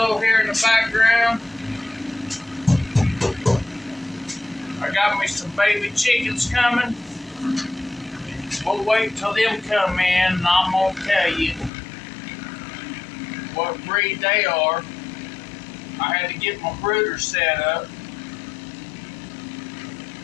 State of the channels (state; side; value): drops out; right; at 11.7 s